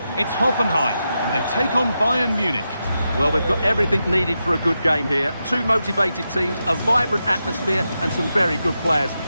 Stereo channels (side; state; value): both; inverted; correlation -0.88